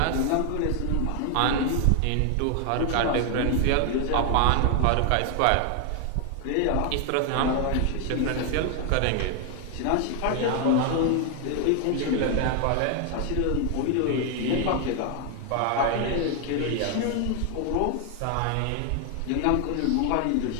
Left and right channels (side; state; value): both; different; correlation 0.00